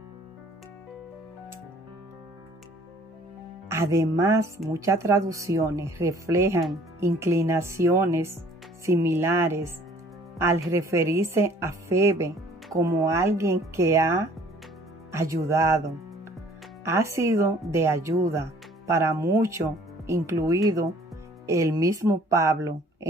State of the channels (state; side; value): normal; both; correlation 0.55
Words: Además, muchas traducciones reflejan inclinaciones similares al referirse a Febe como alguien que ha ayudado. Ha sido de ayuda para muchos, incluido el mismo Pablo